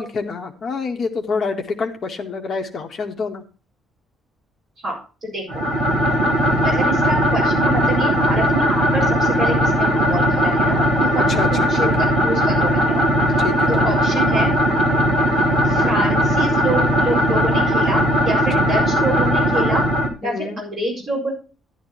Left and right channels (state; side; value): normal; both; correlation 0.60